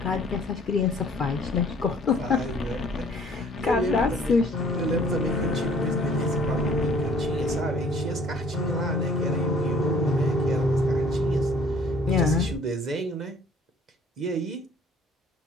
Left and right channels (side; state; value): both; normal; correlation 0.56